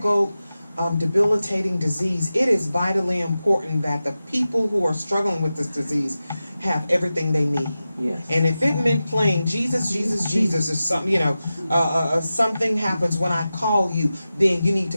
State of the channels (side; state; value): both; inverted; correlation -0.93